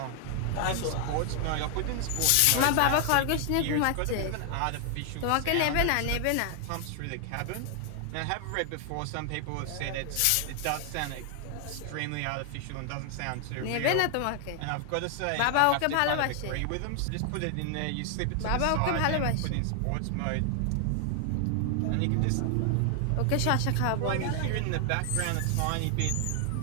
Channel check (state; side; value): different; both; correlation 0.00